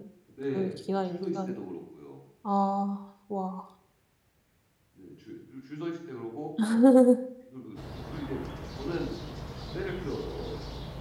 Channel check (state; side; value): identical; both; correlation 1.00